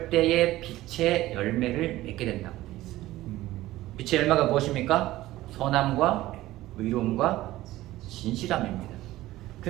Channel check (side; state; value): left; quieter; 16.3 dB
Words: 때에 빛의 열매를 맺게 된다고 되어 있어요. 빛의 열매가 무엇입니까? 선함과 의로움과 진실함입니다.